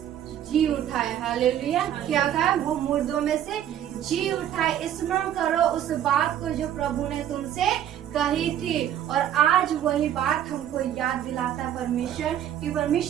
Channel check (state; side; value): quieter; left; 10.7 dB